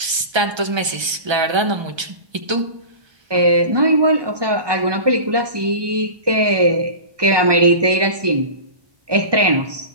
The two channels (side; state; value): left; late; 1.3 ms